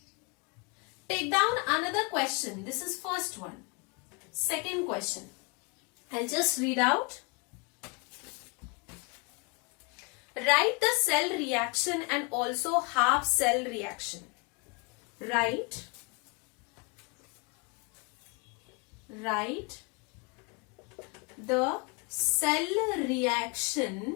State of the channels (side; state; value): right; quieter; 31.2 dB